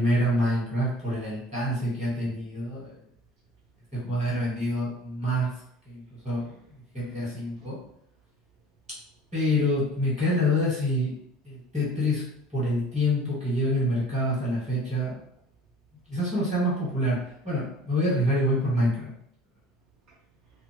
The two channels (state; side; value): normal; both; correlation 0.48